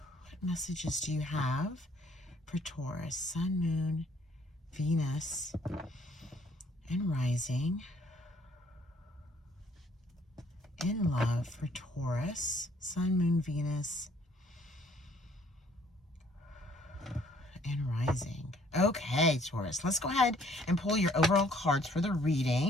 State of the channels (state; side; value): normal; both; correlation 0.62